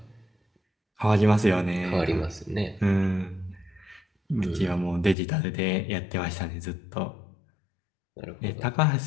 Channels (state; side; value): drops out; right; at 5.2 s